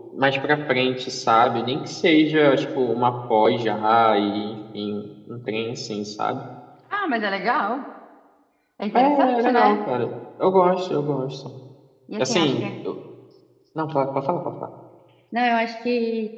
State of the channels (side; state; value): both; identical; correlation 1.00